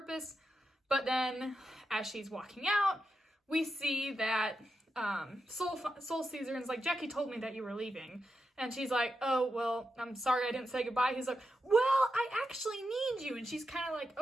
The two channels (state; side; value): normal; both; correlation 0.87